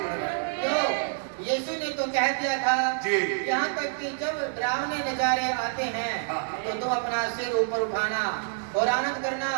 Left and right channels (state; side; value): silent; left; digital silence